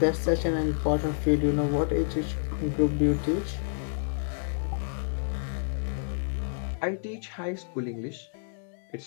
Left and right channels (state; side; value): silent; right; digital silence